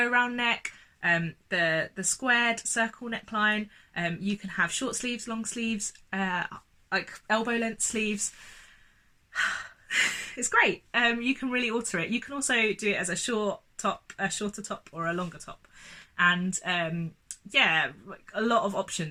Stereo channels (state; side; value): identical; both; correlation 1.00